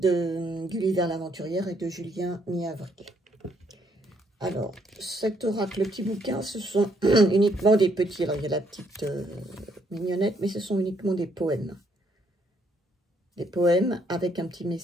Gulliver l'aventurière et de Julien Niavril. Alors, cet oracle, le petit bouquin, ce sont uniquement des petits. Alors, il y a la petite mignonnette, mais ce sont uniquement des poèmes. Des poèmes avec un petit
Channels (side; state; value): both; normal; correlation 0.71